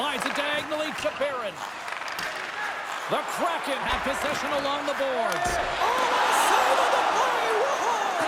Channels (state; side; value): identical; both; correlation 1.00